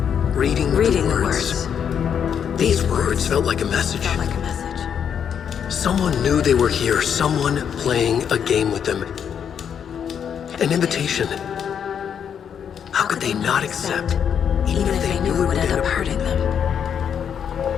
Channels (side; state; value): right; quieter; 8.0 dB